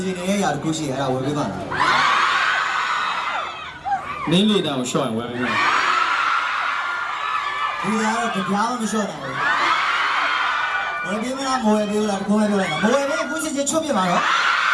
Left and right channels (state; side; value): identical; both; correlation 1.00